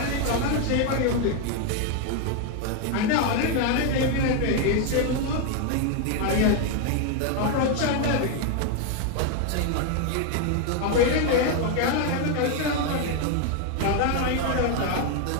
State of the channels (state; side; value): different; both; correlation 0.01